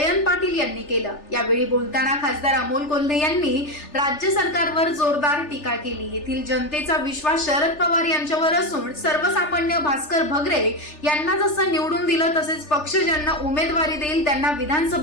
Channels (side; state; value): right; late; 3.4 ms